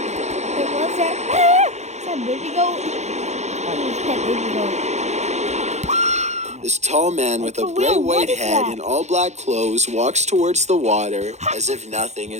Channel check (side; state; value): left; late; 0.33 ms